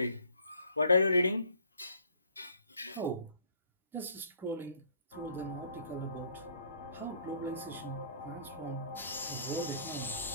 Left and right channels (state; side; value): inverted; both; correlation -0.58